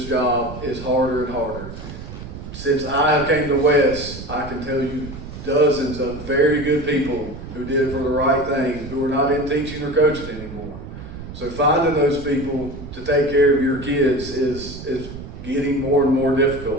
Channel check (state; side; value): noise; right; rumble, 11 dB below the sound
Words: job is harder and harder. Since I came to West, I can tell you dozens of very good people who did it for the right thing, who are not in teaching or coaching anymore. So finding those people to take care of your kids is getting more and more